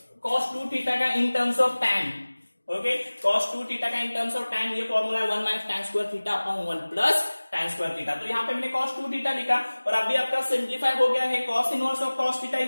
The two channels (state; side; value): inverted; both; correlation -1.00